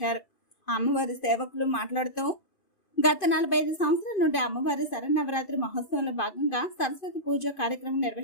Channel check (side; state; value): right; late; 2.5 ms